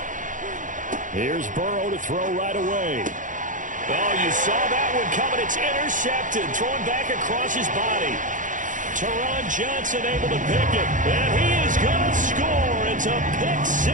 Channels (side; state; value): left; late; 0.37 ms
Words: Here's Burrow to throw right away. Oh, you saw that one coming. It's intercepted. Throwing back across his body. Teron Johnson able to pick it. And he is going to score. It's a pick